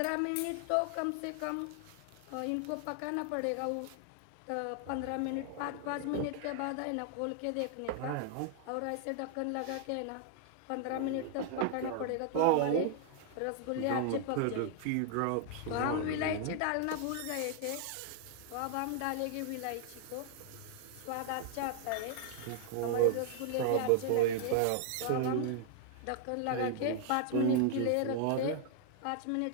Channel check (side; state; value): both; different; correlation 0.00